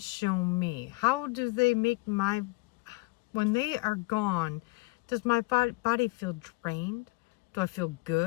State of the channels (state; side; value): quieter; right; 24.3 dB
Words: show me? How do they make when they are gone, does my body feel drained? Do I feel